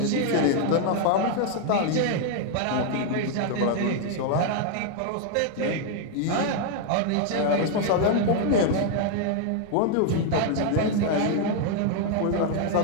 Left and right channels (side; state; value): both; different; correlation 0.00